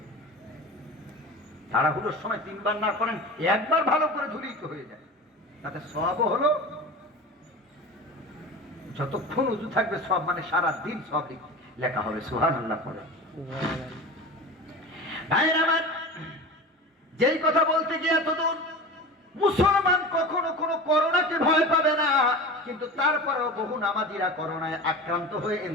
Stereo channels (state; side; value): normal; both; correlation 0.32